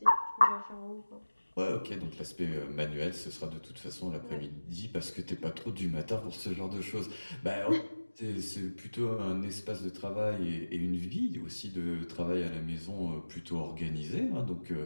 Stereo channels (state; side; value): inverted; both; correlation -1.00